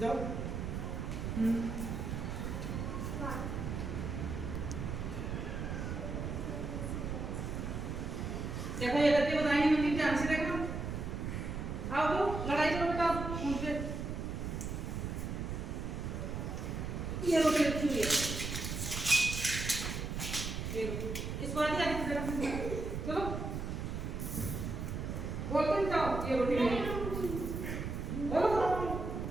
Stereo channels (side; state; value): right; noise; rumble, 4 dB below the sound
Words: देखो ये गलती बताएंगे मंदिर ध्यान से देखना। आओ तो लड़ाई करो बेटा उनसे। ये रोटी रखी हुई है, ये इसको आगे आगे जरा चलो बोलते जाओ। ये रोटी मेरी बोलो